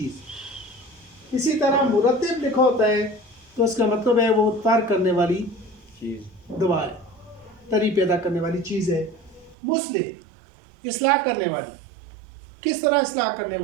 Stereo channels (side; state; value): left; drops out; at 9.6 s